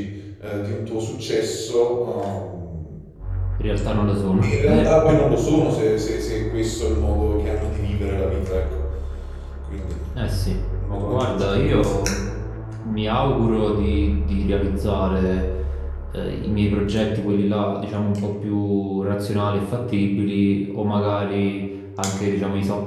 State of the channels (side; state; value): both; identical; correlation 1.00